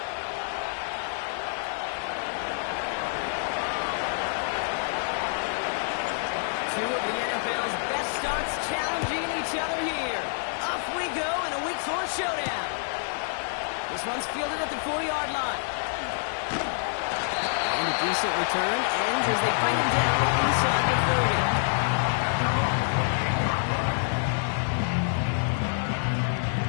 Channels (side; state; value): right; silent; digital silence